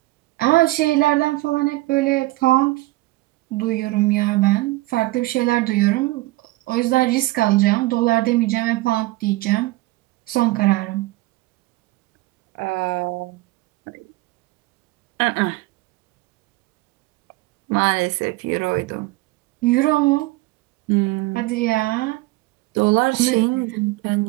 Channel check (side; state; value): left; quieter; 19.8 dB